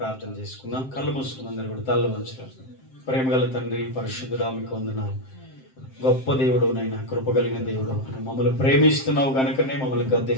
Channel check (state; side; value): late; right; 7.6 ms